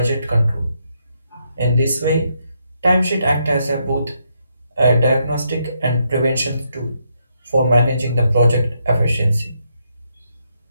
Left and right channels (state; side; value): inverted; both; correlation -0.78